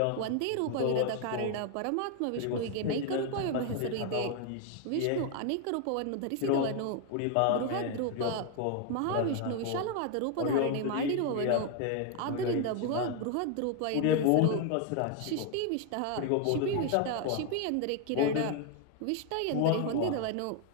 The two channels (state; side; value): different; both; correlation 0.01